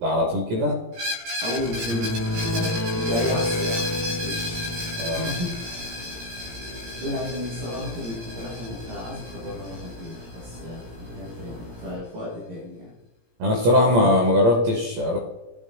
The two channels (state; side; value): late; left; 17 ms